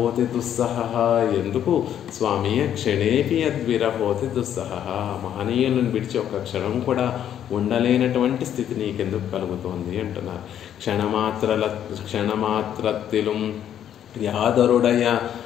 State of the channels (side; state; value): right; quieter; 10.1 dB